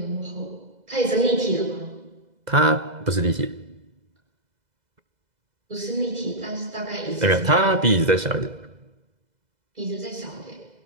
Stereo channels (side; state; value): left; late; 2.0 ms